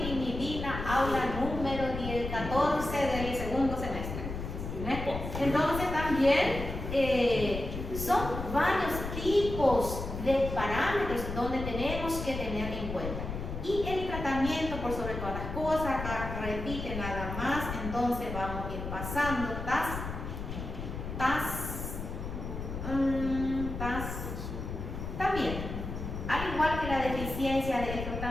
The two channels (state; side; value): noise; left; rumble, 6 dB below the sound